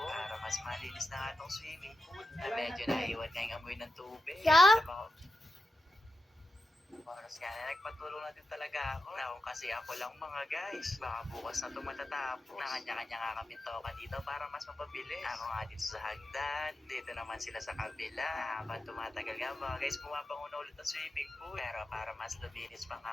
para mas malinis na nga itong swimming pool na medyo naiwan nga yung amoy ng tubig. Sa mga oras nga na nagpatulong na din talaga ako. Now, kasi ako lang mga guys. Baka bukas na ito matatapos. Nakanya-kanya nga kami toka dito para mas mapabilis. Ako nga dito sa hagdan. Dito naman sila sa kabila. Habang tumatagal nga mga guys, pumapanguna ulit ang swimming pool. Pero para mas luminis pa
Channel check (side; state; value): both; normal; correlation 0.90